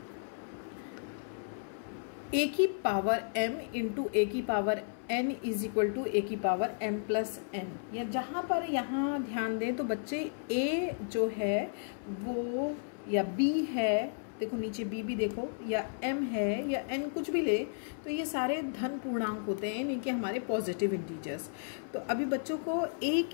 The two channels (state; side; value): silent; right; 55 dB below the other